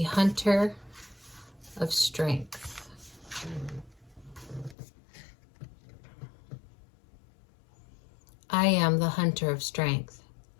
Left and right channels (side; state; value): right; drops out; at 4.8 s